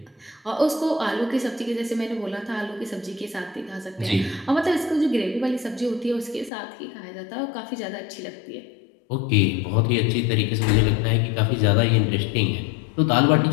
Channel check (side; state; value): right; drops out; at 6.5 s